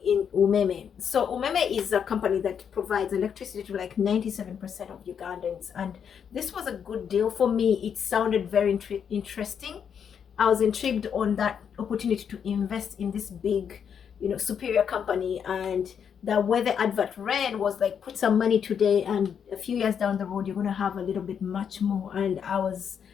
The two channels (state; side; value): quieter; right; 7.6 dB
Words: in Umeme. So Umeme is a company that provides electricity to like 97% of Ugandans, and this was a good deal for me. It sounded very interesting. I was intrigued on that opportunity to invest in this big, superior company, and the way the advert ran was like, put some money today and a few years down the road you're going to have a little bit much more. And I was,